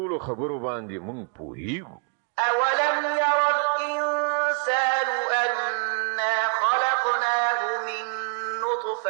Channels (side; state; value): left; quieter; 37.7 dB